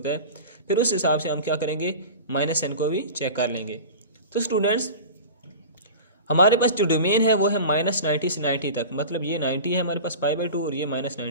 है। फिर उस हिसाब से हम क्या करेंगे, माइनस साइन को भी चेक कर लेंगे। तो स्टूडेंट्स, हमारे पास जो डोमेन है वो है -90 से 90 तक, मतलब ये 90 है हमारे पास π/2 और ये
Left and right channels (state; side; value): inverted; both; correlation -0.33